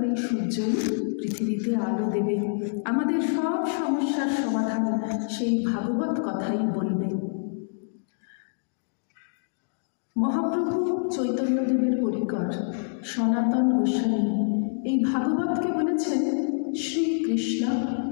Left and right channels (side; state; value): right; silent; digital silence